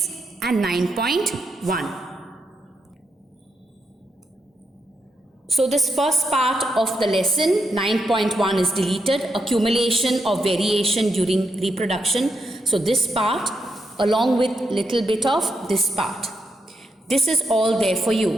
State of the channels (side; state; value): both; normal; correlation 0.81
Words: and 9.1. So this first part of the lesson, 9.1, is deleted, accumulation of variation during reproduction. So this part along with little bit of this part. This is all there for